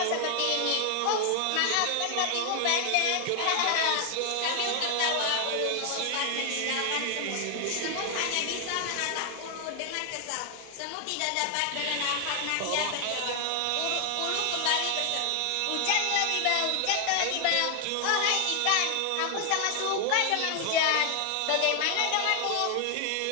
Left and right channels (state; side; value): different; both; correlation 0.00